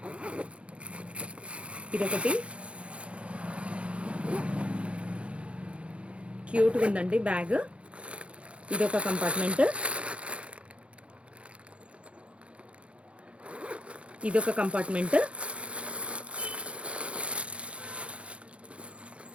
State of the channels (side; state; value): left; late; 0.061 ms